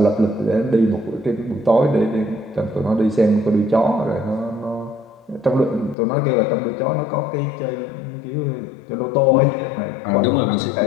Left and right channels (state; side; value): drops out; right; at 6.0 s